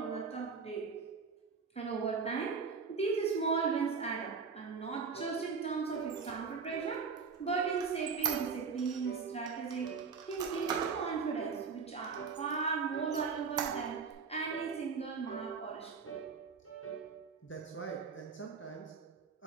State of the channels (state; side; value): quieter; left; 5.4 dB